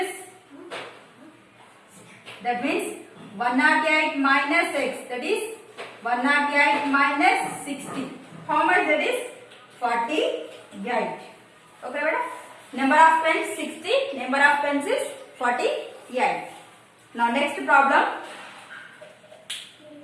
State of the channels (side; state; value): both; identical; correlation 1.00